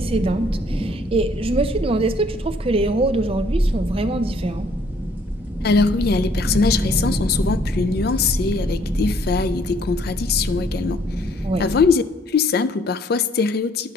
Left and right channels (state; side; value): normal; both; correlation 0.63